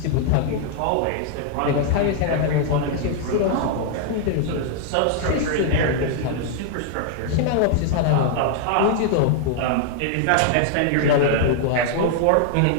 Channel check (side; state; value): both; different; correlation 0.00